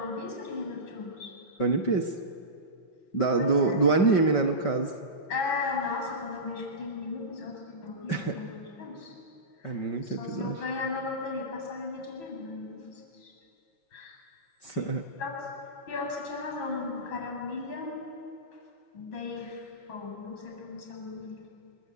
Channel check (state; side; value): late; right; 5.2 ms